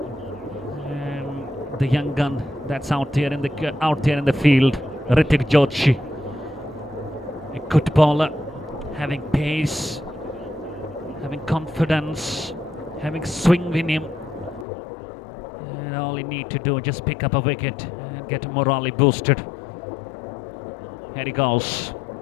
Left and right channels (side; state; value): right; drops out; at 14.7 s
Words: And the young gun that's out there in the field, Hrithik Joshi. A good bowler, having pace, having confidence, having swing in him, and all you need to do is just pick up a wicket and get morally boosted. Here he goes.